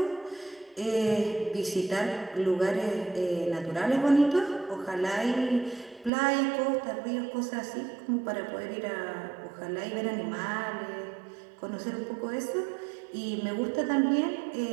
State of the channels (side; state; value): left; drops out; at 6.1 s